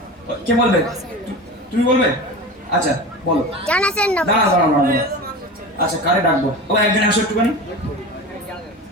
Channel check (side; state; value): both; normal; correlation 0.30